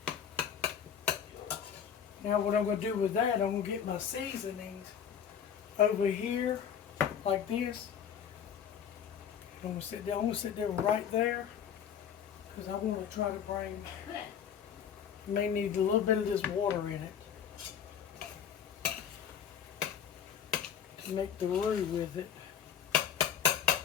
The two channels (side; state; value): right; quieter; 8.3 dB